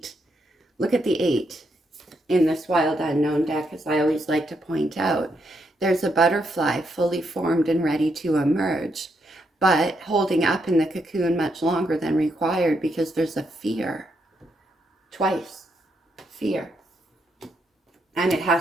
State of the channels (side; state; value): both; normal; correlation 0.79